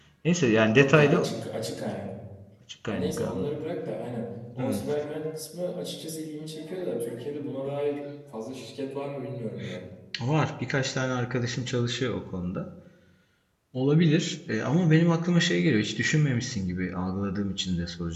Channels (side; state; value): both; identical; correlation 1.00